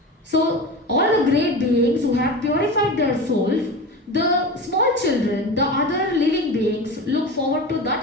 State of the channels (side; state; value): both; normal; correlation 0.28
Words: So all the great beings who have purified their souls, the small children, the other living beings look forward to